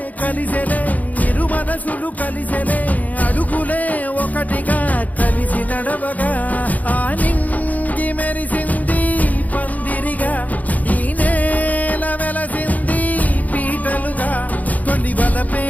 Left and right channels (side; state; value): right; late; 0.077 ms